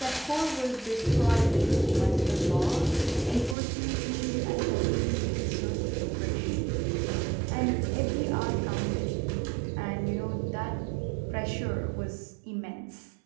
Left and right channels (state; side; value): drops out; left; at 3.6 s